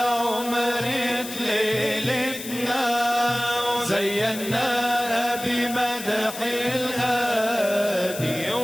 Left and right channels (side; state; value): left; noise; hiss, 10 dB below the sound